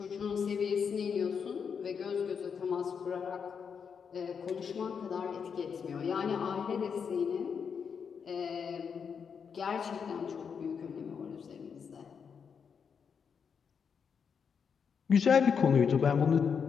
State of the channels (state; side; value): quieter; right; 6.6 dB